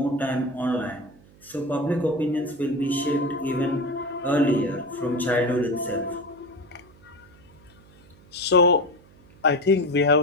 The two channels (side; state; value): right; noise; hum, 26 dB below the sound